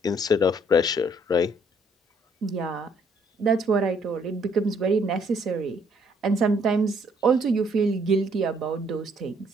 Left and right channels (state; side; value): normal; both; correlation 0.66